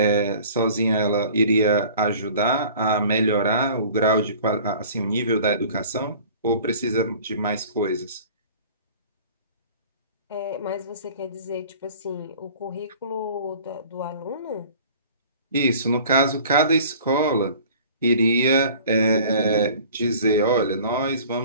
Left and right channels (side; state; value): both; inverted; correlation -0.46